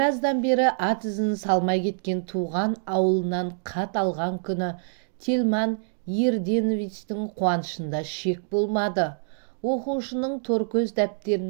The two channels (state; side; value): silent; left; digital silence